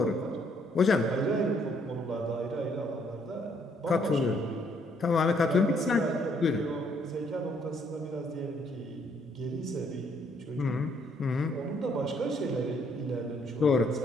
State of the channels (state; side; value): normal; both; correlation 0.68